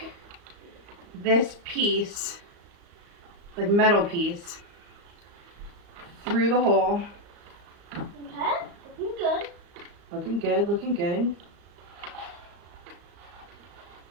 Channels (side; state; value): left; late; 34 ms